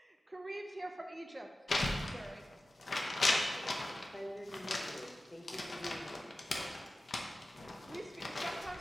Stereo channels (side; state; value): both; normal; correlation 0.95